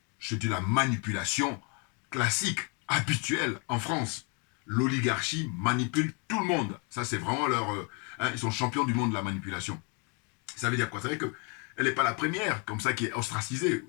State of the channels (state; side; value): quieter; right; 34.6 dB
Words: C'est de la manipulation classique, habituelle en France. L'oligarchie manipule tout le monde. Ça, c'est vraiment ils sont champions du monde de la manipulation. Ça veut dire quoi? Ça veut dire qu'elle n'est pas la première, comme ça, qui est ostracisée,